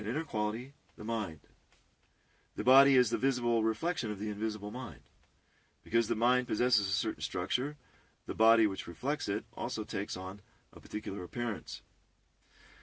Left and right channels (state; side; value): identical; both; correlation 1.00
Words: inner quality, the mind. The body is the visible reflection of the invisible mind. Because the mind possesses a certain structure, the body which reflects it also takes on a particular appearance.